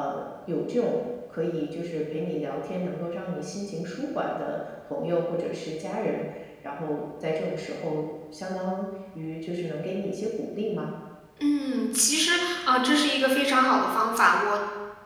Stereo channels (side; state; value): both; identical; correlation 1.00